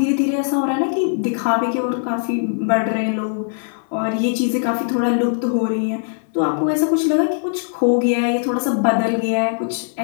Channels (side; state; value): right; silent; 66 dB below the other